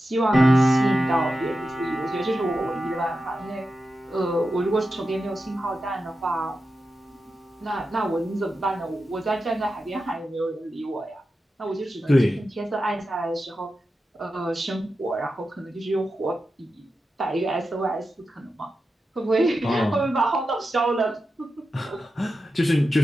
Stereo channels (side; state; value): both; normal; correlation 0.91